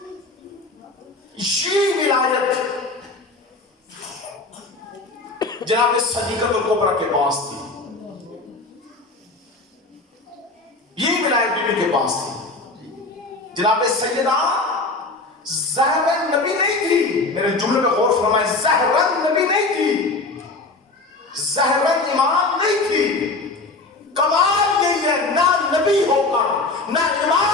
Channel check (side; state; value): right; quieter; 3.4 dB